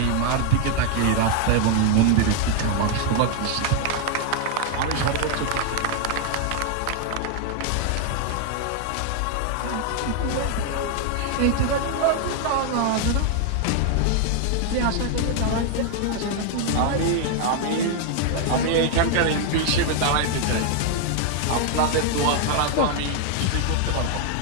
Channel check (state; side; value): different; both; correlation 0.00